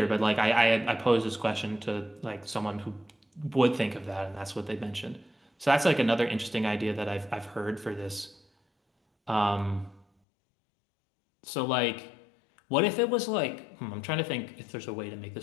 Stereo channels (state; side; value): drops out; right; at 10.1 s